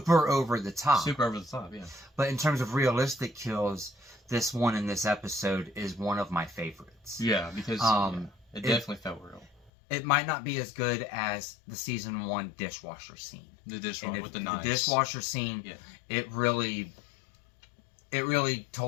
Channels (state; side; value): drops out; right; at 9.7 s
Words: over the top. Super over the top, yeah. But in terms of realistic kills, this one in this episode is one of my favorites. Yeah, because it definitely felt real. It might not be as good as the season 1 dishwasher scene. The dishwasher with the knives. The dishwasher scene, it really